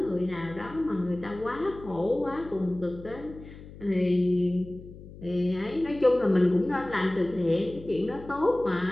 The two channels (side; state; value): left; noise; hum, 16 dB below the sound